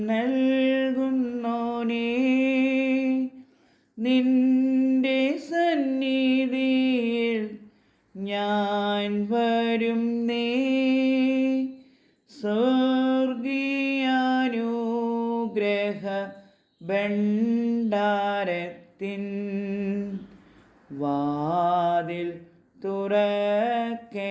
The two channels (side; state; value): both; identical; correlation 1.00